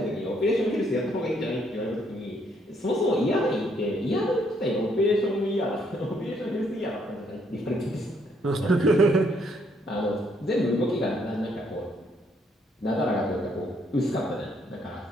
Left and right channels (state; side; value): normal; both; correlation 0.70